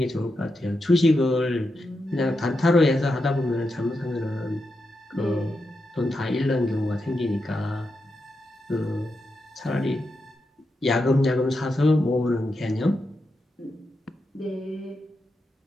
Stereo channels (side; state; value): both; normal; correlation 0.87